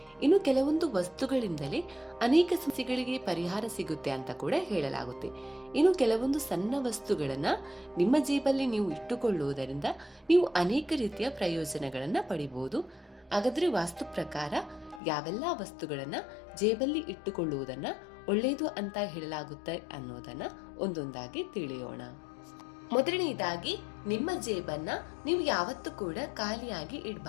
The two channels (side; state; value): right; drops out; at 15.0 s